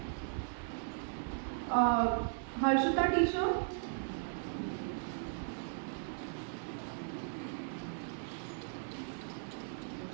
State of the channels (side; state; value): left; silent; digital silence